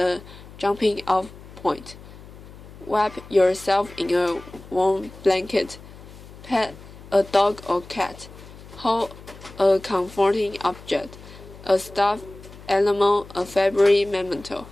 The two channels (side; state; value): left; noise; hum, 18 dB below the sound